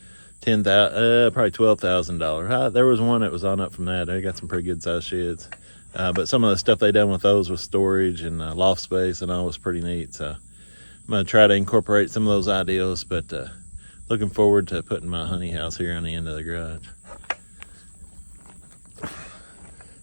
$10,000, probably $12,000. There was one that was on up from that. They got some pretty good sized sheds, but some of the stuff they done with those with storage and loft space and all was pretty neat. So I'm gonna try to incorporate some of those ideas, but looking forward to putting my honey house here on the end of the garage.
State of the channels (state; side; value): inverted; both; correlation -1.00